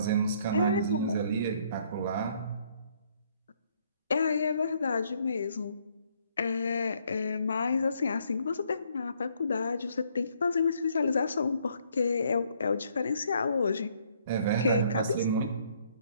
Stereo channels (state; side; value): inverted; both; correlation -0.67